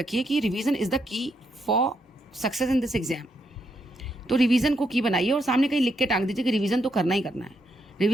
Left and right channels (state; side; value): normal; both; correlation 0.78